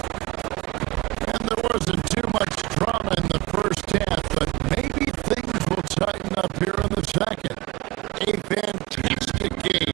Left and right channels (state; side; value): quieter; left; 20.8 dB